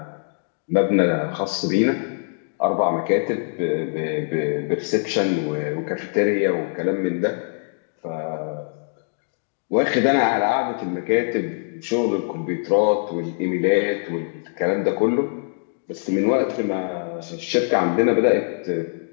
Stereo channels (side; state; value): right; silent; digital silence